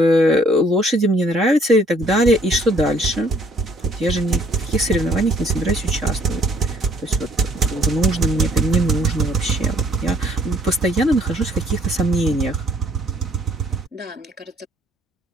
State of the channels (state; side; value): normal; both; correlation 0.62